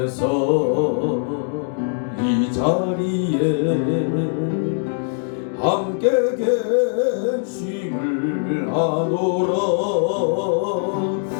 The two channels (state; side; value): silent; right; 65 dB below the other